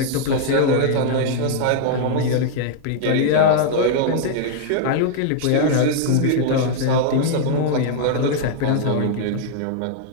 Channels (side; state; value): both; different; correlation -0.01